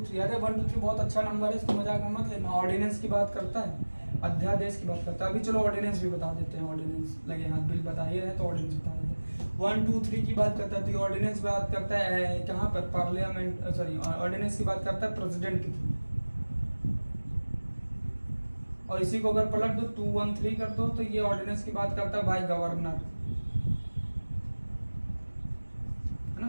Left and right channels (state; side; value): inverted; both; correlation -1.00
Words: 3, अरे 1 2 3 बहुत अच्छा नंबर है, इसको मजाक में मत लेना। ऑर्डिनेंस की बात करता है, अध्यादेश की बात करता है। अभी चलो ऑर्डिनेंस भी बता देते हैं, ऑर्डिनेंस लगे हाथ बिल बता ही रहे तो ऑर्डिनेंस बता देते हैं। 1 2 3 की बात करता है तो ऑर्डिनेंस बात करता है कहाँ पर, पार्लियामेंट, सॉरी ऑर्डिनेंस की बात करता है प्रेसिडेंट के थ्रू। और इसी को अगर पलट दो 2 1 3 कर दो तो ये ऑर्डिनेंस की बात करता है भाई गवर्नर, है